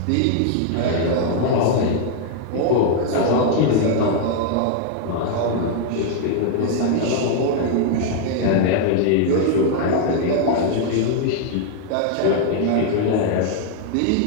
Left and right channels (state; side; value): different; both; correlation 0.00